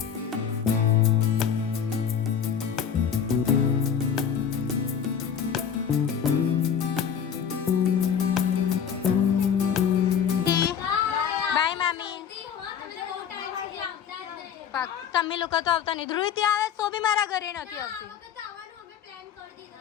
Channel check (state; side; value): quieter; right; 7.9 dB